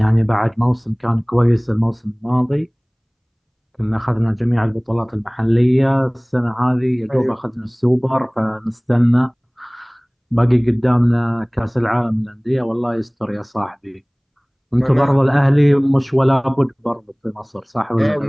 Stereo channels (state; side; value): identical; both; correlation 1.00